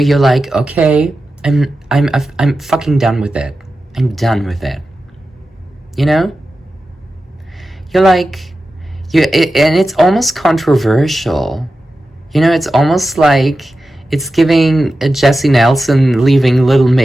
like, okay, I'm fucking done with it. I'm done with it. You know? You're like, and it's almost controversial. You know, it's almost like it's giving Jessie Nelson leaving Little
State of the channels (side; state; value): both; normal; correlation 0.93